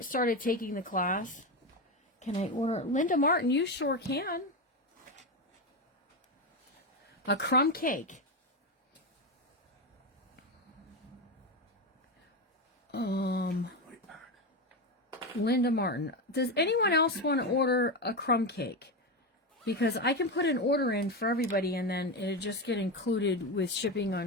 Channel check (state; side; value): normal; both; correlation 0.15